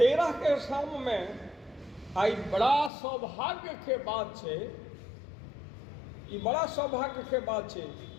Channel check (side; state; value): right; drops out; at 2.9 s